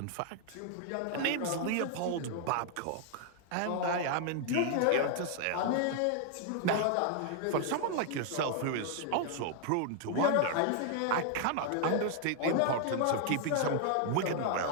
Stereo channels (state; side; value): different; both; correlation 0.00